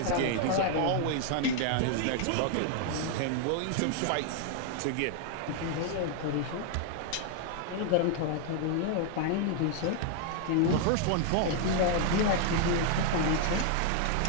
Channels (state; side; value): different; both; correlation 0.00